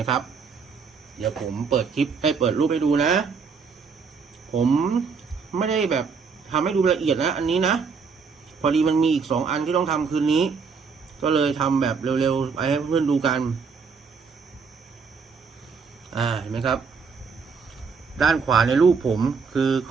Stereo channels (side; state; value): left; quieter; 5.4 dB